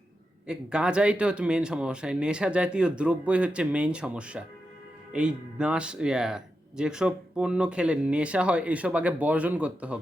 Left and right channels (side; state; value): both; normal; correlation 0.88